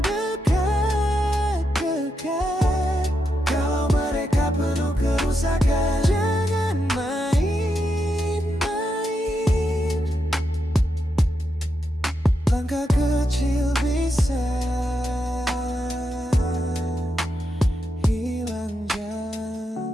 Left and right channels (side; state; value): both; normal; correlation 0.84